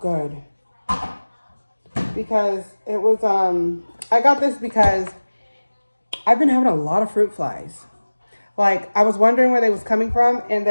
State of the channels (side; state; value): both; inverted; correlation -1.00